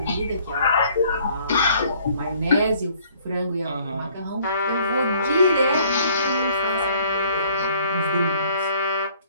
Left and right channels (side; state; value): both; inverted; correlation -0.59